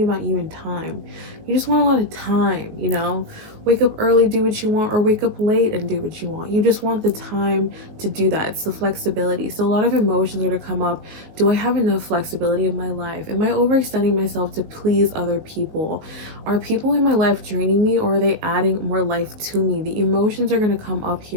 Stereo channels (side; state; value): left; late; 19 ms